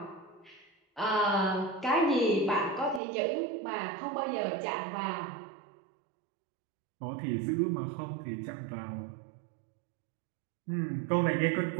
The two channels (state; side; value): drops out; left; at 3.0 s